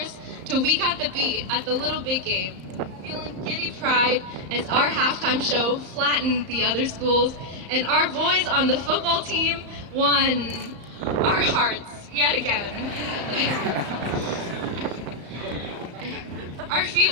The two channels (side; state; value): left; late; 34 ms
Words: till we got the beat at the Little Big Game, feeling giddy pride as our halftime show flattened the other schools and our boys on the football team won our hearts yet again. Our feet